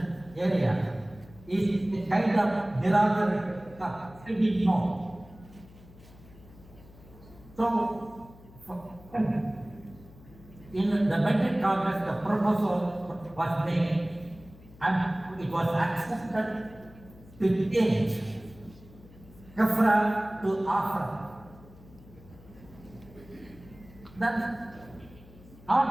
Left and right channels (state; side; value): noise; left; hum, 21 dB below the sound